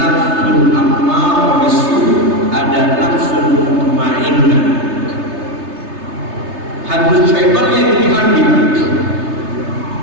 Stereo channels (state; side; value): late; left; 3.3 ms